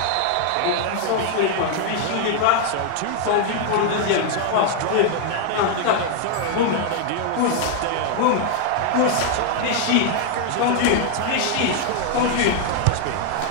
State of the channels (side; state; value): both; different; correlation 0.00